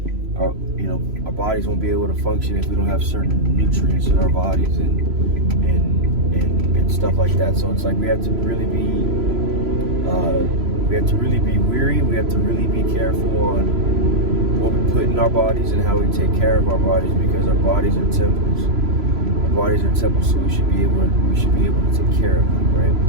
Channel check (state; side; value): late; left; 3.0 ms